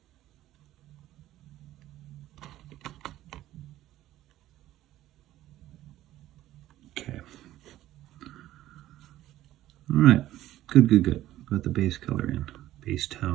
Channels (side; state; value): left; quieter; 14.3 dB